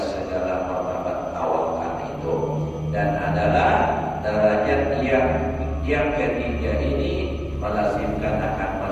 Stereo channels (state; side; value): identical; both; correlation 1.00